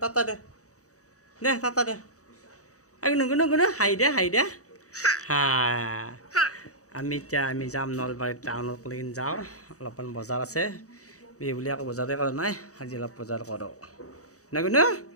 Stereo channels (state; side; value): late; right; 0.66 ms